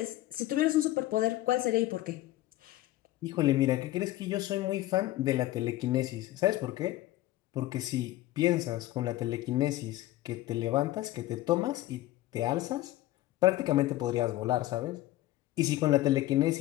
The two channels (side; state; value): right; quieter; 15.9 dB